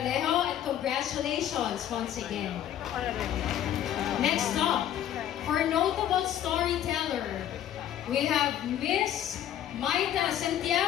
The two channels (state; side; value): quieter; right; 11.0 dB